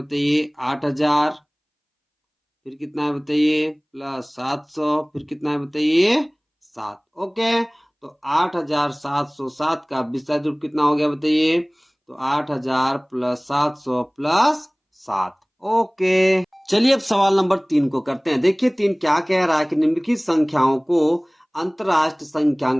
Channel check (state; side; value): identical; both; correlation 1.00